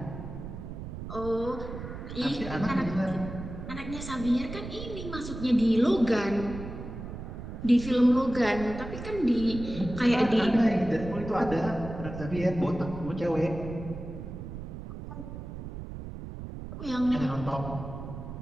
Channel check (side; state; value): right; noise; rumble, 9 dB below the sound